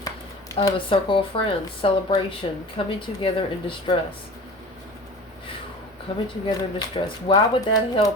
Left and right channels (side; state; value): both; normal; correlation 0.38